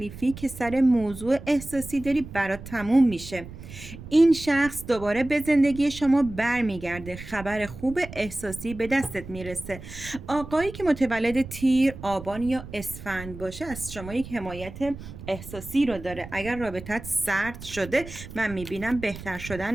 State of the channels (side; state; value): right; noise; rumble, 13 dB below the sound